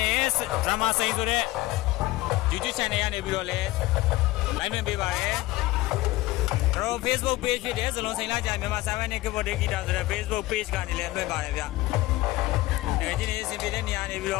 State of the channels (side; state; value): right; quieter; 18.5 dB